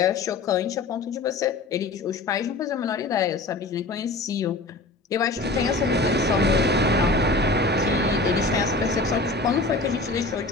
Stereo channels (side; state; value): right; quieter; 3.2 dB